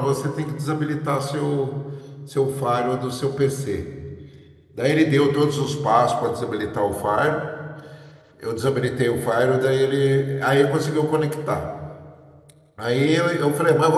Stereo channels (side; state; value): both; identical; correlation 1.00